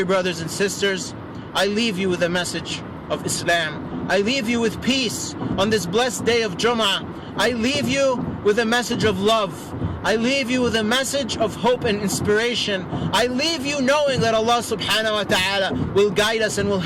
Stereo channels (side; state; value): both; identical; correlation 1.00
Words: brothers and sisters, I leave you with a message of Islam. I leave you with peace on this blessed day of Jum'ah. I leave you with a message of love. I leave you with a message of hope and inspiration. I leave you knowing that Allah subhanahu wa ta'ala will guide us and will